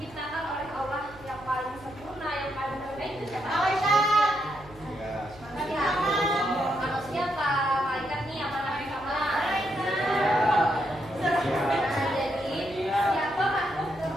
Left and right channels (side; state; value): right; noise; hum, 21 dB below the sound